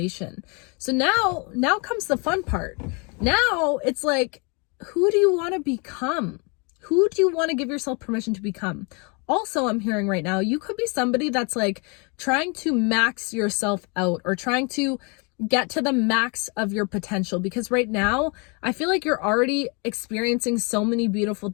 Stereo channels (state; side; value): quieter; right; 32.8 dB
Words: So now comes the fun part. Now it's like, who do you want to become? Who do you want to give yourself permission to become? Also, I'm hearing right now, you could be somebody that's like trying to max yourself out, or trying to get to the max of your potential, because right now I feel like you're already experiencing so many beautiful